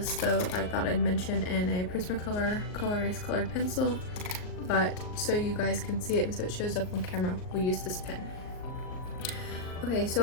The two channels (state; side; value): late; right; 38 ms